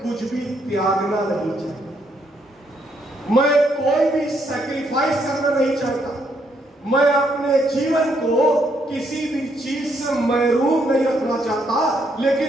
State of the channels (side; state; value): both; normal; correlation 0.73